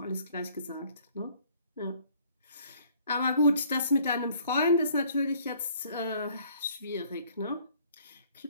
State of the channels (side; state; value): both; inverted; correlation -0.59